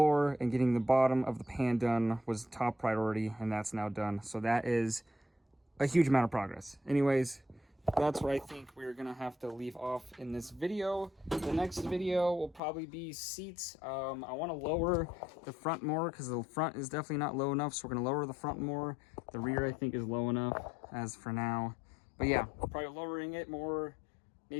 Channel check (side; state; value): right; drops out; at 12.6 s